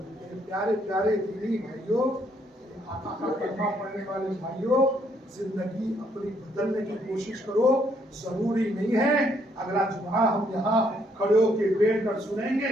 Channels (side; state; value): both; normal; correlation 0.70